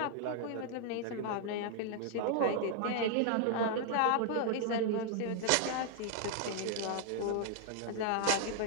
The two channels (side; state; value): both; different; correlation 0.00